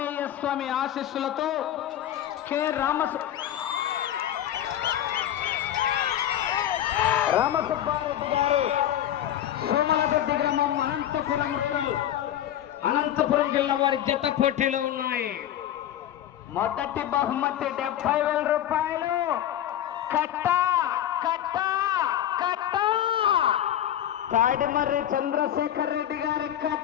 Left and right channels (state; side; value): quieter; right; 11.4 dB